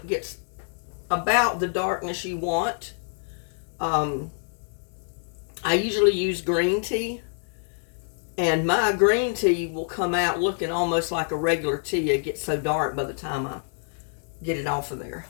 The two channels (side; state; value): right; silent; 60 dB below the other